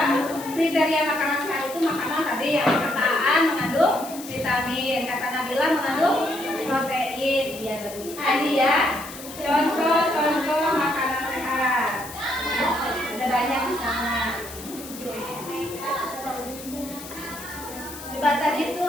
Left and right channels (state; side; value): noise; left; hiss, 14 dB below the sound